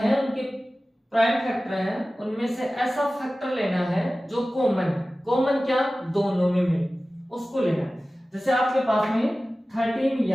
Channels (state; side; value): normal; both; correlation 0.96